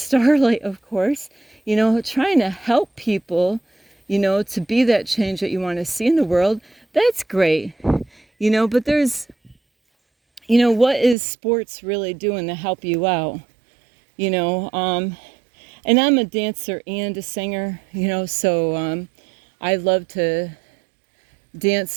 of course, you know, trying to help people, you know, to be that change that you want to see in the world, that's great. You know, but there's, you know, what is sports really doing to help you out? You know, and I'm a dancer and a singer, you know, so I love to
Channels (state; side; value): drops out; left; at 11.2 s